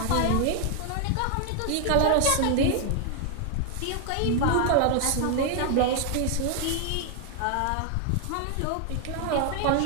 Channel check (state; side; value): different; both; correlation 0.00